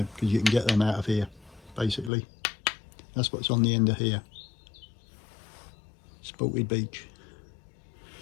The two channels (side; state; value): right; drops out; at 2.1 s